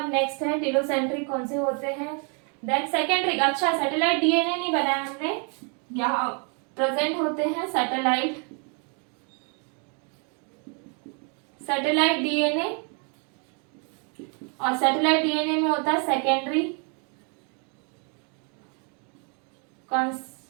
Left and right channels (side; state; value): left; quieter; 38.3 dB